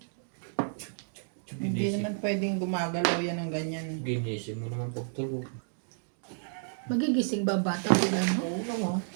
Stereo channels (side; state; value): left; silent; digital silence